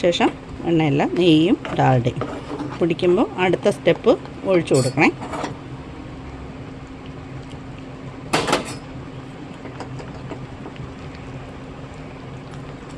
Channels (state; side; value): identical; both; correlation 1.00